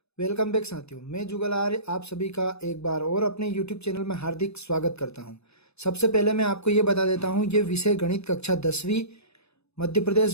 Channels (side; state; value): right; late; 0.79 ms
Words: वेलकम बैक साथियों, मैं जुगल आर्य आप सभी का एक बार और अपने YouTube चैनल में हार्दिक स्वागत करता हूं। सबसे पहले मैं आपको ये बता देता हूं, ये विषय गणित कक्षा 10वीं मध्य